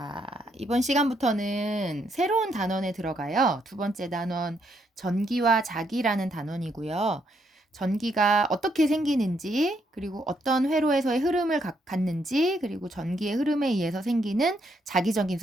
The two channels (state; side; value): normal; both; correlation 0.75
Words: 이번 시간부터는 새로운 단원에 들어가요. 두 번째 단원, 전기와 자기라는 단원이고요. 전기가 어떻게 생기는지, 그리고 어떤 회로에서의 흐름을 갖는지, 그리고 전기의 흐름에 의해서 생기는 자기적인